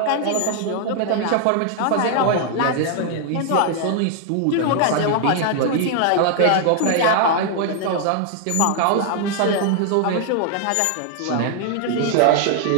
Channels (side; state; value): both; different; correlation 0.00